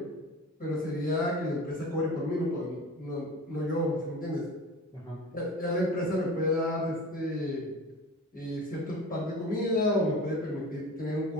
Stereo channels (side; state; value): both; normal; correlation 0.37